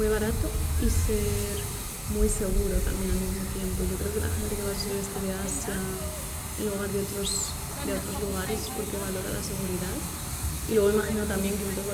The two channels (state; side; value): identical; both; correlation 1.00